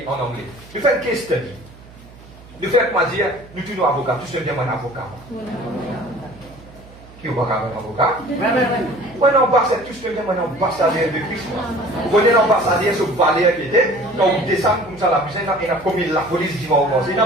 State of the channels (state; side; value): noise; right; hum, 21 dB below the sound